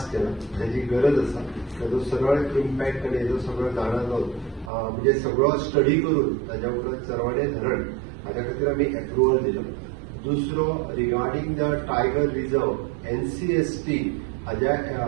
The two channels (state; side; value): drops out; left; at 4.7 s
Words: केला. ताची गरज आसा. ताजो सरळ इम्पॅक्ट आनी हेजो सगळो जाणा म्हणजे सगळो स्टडी करून ताज्या उपरांत चरवडे धरण हाज्या खातीर आमी एप्रुवल दिलो. दुसरो regarding the tiger reserve NCST हाज्या